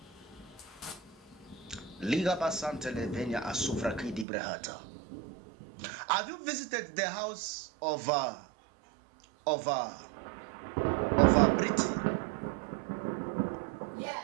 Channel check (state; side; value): drops out; left; at 4.2 s